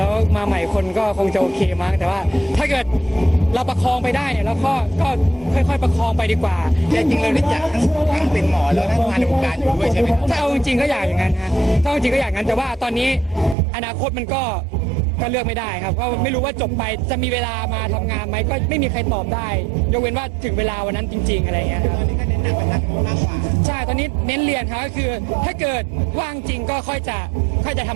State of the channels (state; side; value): drops out; left; at 13.6 s